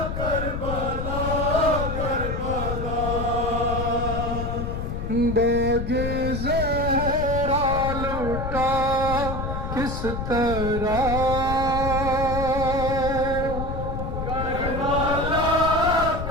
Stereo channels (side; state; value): left; noise; rumble, 4 dB below the sound